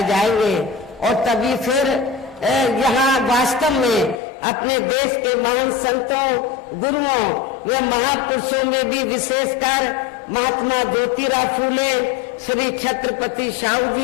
जाएंगे और तभी फिर यहाँ वास्तव में अपने देश के महान संतों, गुरुओं व महापुरुषों में भी विशेषकर महात्मा ज्योतिराव फूले, श्री छत्रपति शाहू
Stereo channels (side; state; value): right; drops out; at 4.2 s